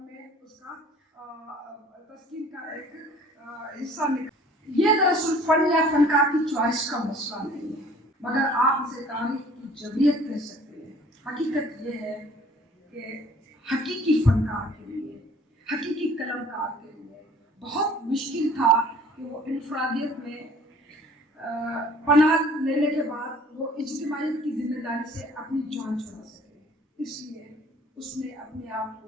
میں اس کا تسکین کا ایک حصہ نکالا. یہ دراصل فن یا فنکار کی چوائس کا مسئلہ نہیں ہے, مگر آپ اسے تاریخ کی جبریت کہہ سکتے ہیں. حقیقت یہ ہے کہ حقیقی فنکار کے لیے, حقیقی قلمکار کے لیے بہت مشکل تھا کہ وہ انفرادیت میں پناہ لینے کے بعد وہ اجتماعیت کی ذمہ داری سے اپنی جان چھڑا سکے. اس لیے اس نے اپنے آپ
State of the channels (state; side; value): normal; both; correlation 0.52